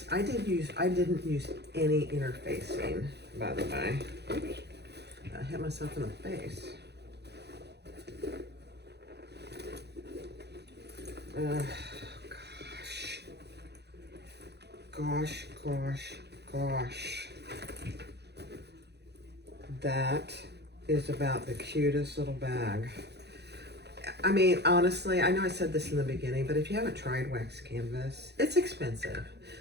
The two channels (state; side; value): late; left; 0.49 ms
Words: I didn't use any interfacing, by the way. Oops. I hit myself in the face. Gosh. That is about the cutest little bag. I mean, honestly, I know I said this in the beginning, but if you haven't tried wax canvas, it's expensive.